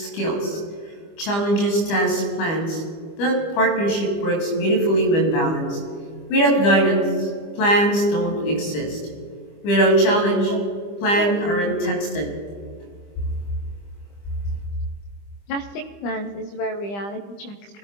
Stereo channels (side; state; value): right; late; 25 ms